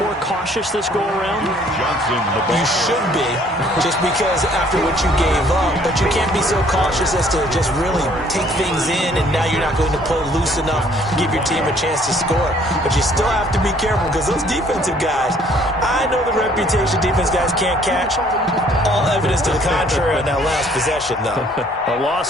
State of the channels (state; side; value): normal; both; correlation 0.60